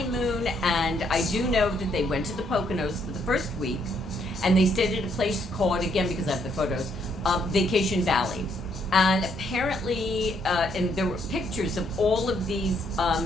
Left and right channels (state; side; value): normal; both; correlation 0.71